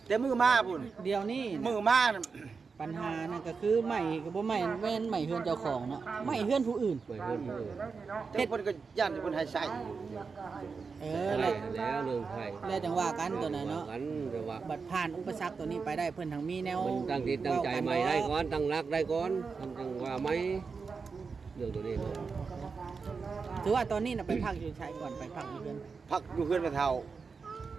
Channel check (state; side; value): quieter; left; 5.0 dB